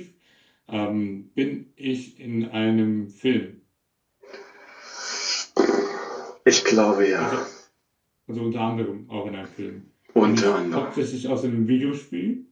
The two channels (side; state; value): both; identical; correlation 1.00